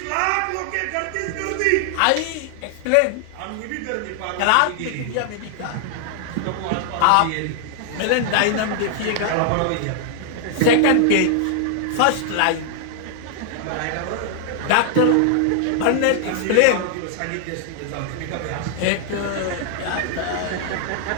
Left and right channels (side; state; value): both; different; correlation 0.00